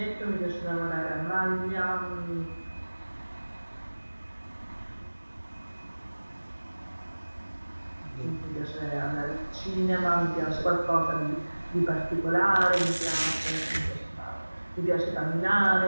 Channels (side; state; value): both; inverted; correlation -1.00